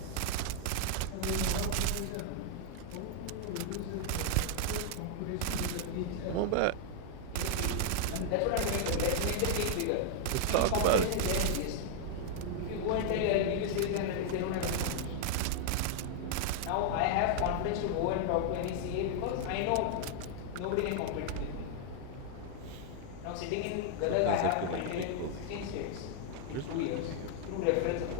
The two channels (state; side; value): different; both; correlation 0.00